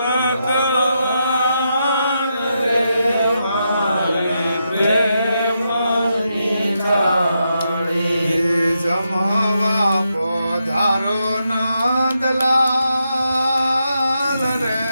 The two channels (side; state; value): both; inverted; correlation -0.84